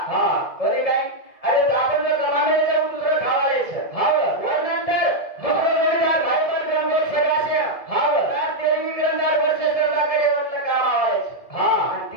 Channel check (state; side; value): late; right; 1.7 ms